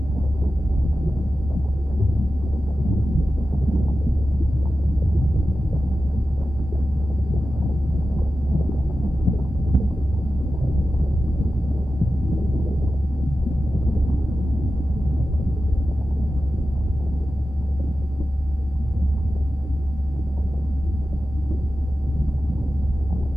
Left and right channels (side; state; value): both; normal; correlation 0.93